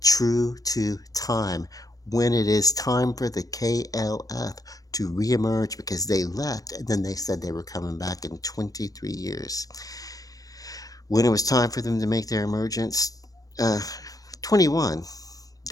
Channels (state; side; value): late; right; 0.18 ms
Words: true to time. When it is time for the KLF to reemerge because they left and then they said they were coming back in 23 years. When it was time for them to make their emergence, uh, 21,